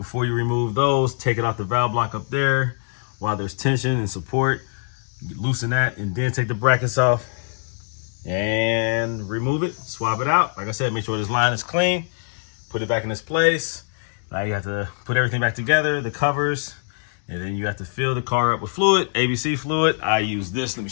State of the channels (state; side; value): silent; right; digital silence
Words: you remove those, take it off the valve block up there while there's tension and support. Loosen that and then take the brackets off and remove it, swap it out. Like I said, make sure this line is clean. Put it back in its place. Now you have to put everything back together, the covers, and then you have to fill the car up with fluid, ABC fluid. I use this. Let me